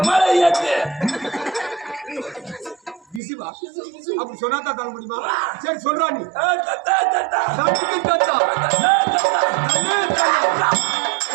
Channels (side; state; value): left; drops out; at 3.2 s